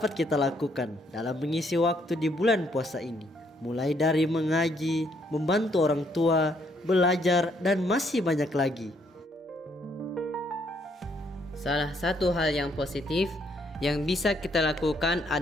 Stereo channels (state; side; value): normal; both; correlation 0.70